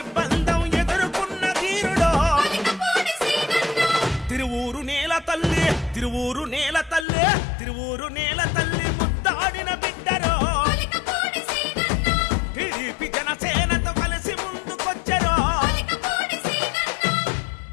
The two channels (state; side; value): drops out; right; at 7.1 s